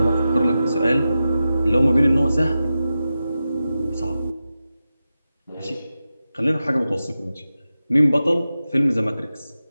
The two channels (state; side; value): inverted; both; correlation -0.92